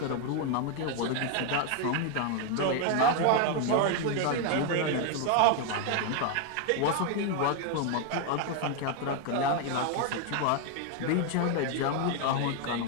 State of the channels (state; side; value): different; both; correlation 0.01